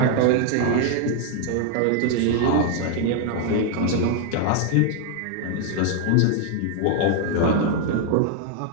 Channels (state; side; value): different; both; correlation 0.00